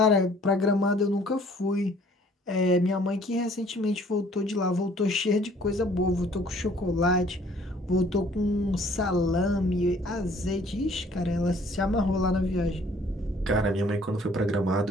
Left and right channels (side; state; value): both; normal; correlation 0.57